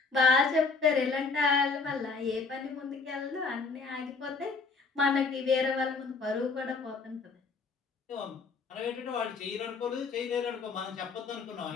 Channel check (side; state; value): right; quieter; 4.6 dB